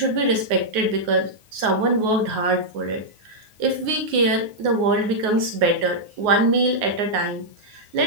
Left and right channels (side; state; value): left; late; 9.5 ms